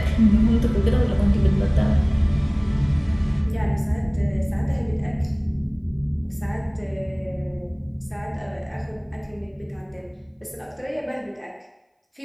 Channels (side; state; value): both; identical; correlation 1.00